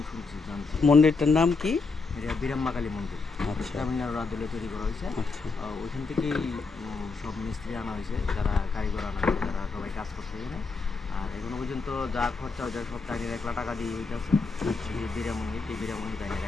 শুনছি জানছি। মন্দিরটার নাম কি? এটা বীরাম্মা কালী মন্দির, আচ্ছা, তামিলনাড়ু রাজ্যে তৈরি করা হয়েছে। আচ্ছা, ওইখান থেকেই সব মিস্ত্রি আনা হয়েছে, যারা কারিগর আনা হয়েছে, যারা সবাই কাজ করছে এখানে। আর এখনো পর্যন্ত যা খরচা হয়েছে সব তাইনের 1 লাখ টাকা দিয়ে হইতেছে। বীরামণি তাইনের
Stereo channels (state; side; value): quieter; right; 4.2 dB